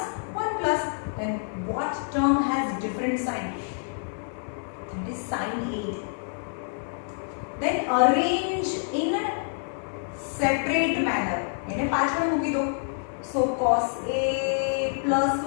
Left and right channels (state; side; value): silent; right; 60 dB below the other